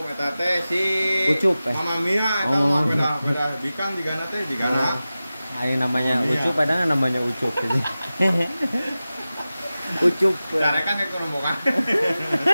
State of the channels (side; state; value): both; inverted; correlation -0.95